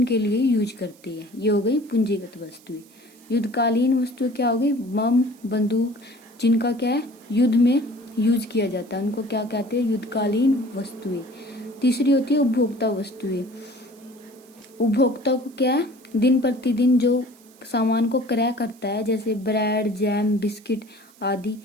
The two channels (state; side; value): noise; right; hiss, 27 dB below the sound